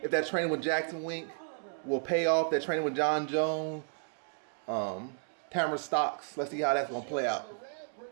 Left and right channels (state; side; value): silent; left; digital silence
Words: if that training with Jackson Wink will pay off, that training with John Jones, Tamara Stocks. Let's see how that's going to play out.